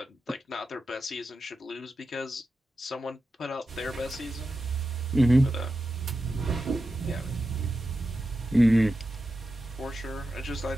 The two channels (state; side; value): normal; both; correlation 0.91